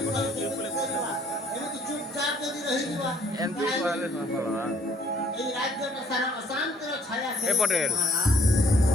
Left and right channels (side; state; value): both; normal; correlation 0.61